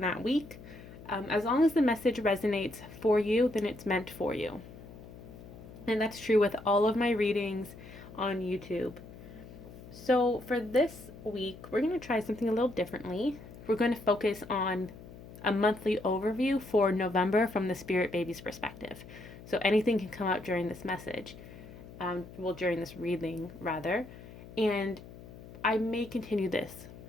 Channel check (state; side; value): noise; left; hum, 16 dB below the sound